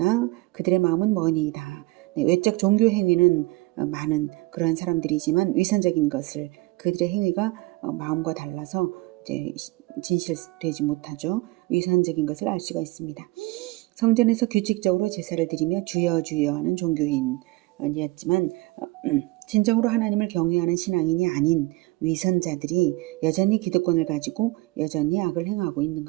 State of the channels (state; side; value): quieter; left; 21.3 dB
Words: 그들의 마음은 머니이다. 외적 종교 행위는 많은 그러한 사람들이지만 위선적인 것을 그들의 행위가 마음과 달라서 이제 진실되지 못하죠. 위선적인 것을 알 수가 있습니다. 성전에서 규칙적으로 제사를 드리며 주여 주여 하는 종교인이었지만 진정으로 하나님을 경외하는 신앙인이 아닌 위선자들이 여전히 기득권을 가지고 여전히 악을 행하고 있는